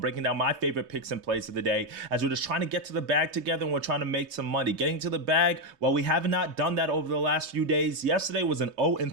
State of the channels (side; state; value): left; late; 3.6 ms